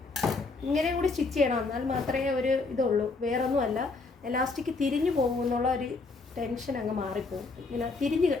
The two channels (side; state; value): right; quieter; 3.9 dB